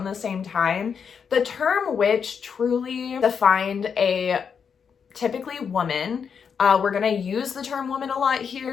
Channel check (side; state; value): right; quieter; 6.7 dB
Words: the same time. The term witch truly defined a typically woman. We're going to use the term woman a lot